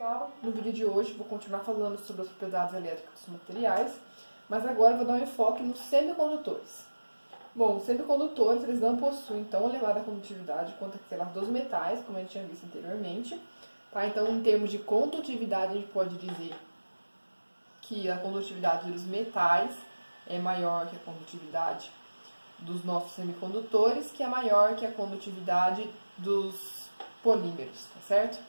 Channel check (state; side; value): inverted; both; correlation -1.00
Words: pessoal, no vídeo de hoje vou continuar falando sobre as propriedades elétricas dos materiais, mas agora eu vou dar um enfoque nos semicondutores. Bom, os semicondutores eles não possuem tão elevada condutividade quanto aquelas dos metais, como a gente tinha visto anteriormente. Tá? Então, em termos de condutividade, a gente pode dizer que a condutividade dos metais é maior que a condutividade dos nossos semicondutores, que é maior que a condutividade dos polímeros, tá certo?